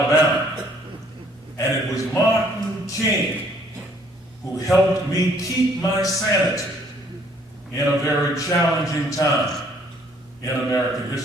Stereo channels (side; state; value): both; normal; correlation 0.62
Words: And it was Martin King who helped me keep my sanity in a very challenging time in American